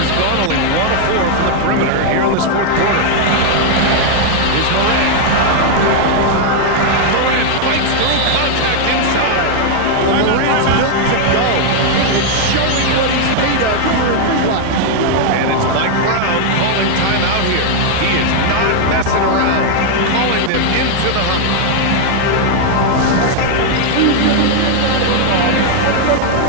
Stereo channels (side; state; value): both; different; correlation 0.00